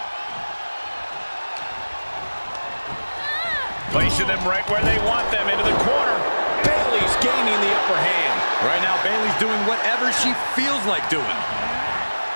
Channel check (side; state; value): both; inverted; correlation -1.00